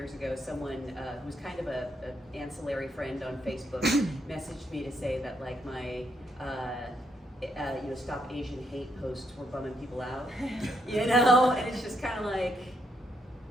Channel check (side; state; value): both; normal; correlation 0.76